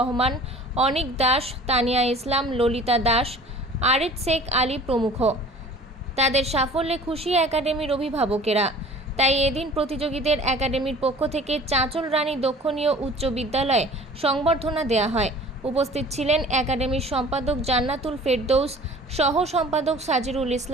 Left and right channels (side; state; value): both; normal; correlation 0.46